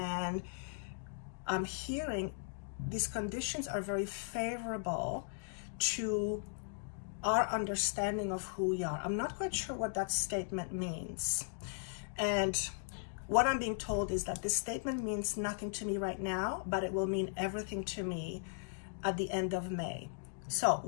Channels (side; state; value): right; silent; digital silence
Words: I'm hearing these conditions are very favorable to our understanding of who we are. I'm not quite sure what that statement means. And what I'm being told is that this statement means nothing to me right now, but it will mean everything to me at the end of May. So